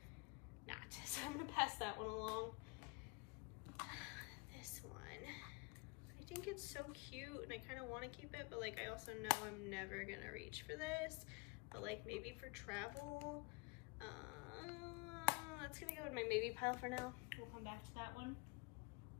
not. So I'm gonna pass that one along. This one, I think it's so cute and I kind of want to keep it, but like I also know I'm never gonna reach for this, but like maybe for travel. That's gonna go in my maybe pile for now. We'll come back to that one.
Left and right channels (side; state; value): right; quieter; 29.6 dB